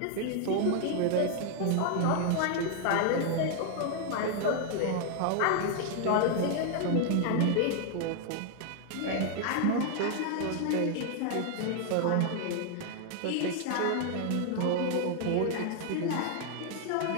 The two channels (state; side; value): different; both; correlation 0.00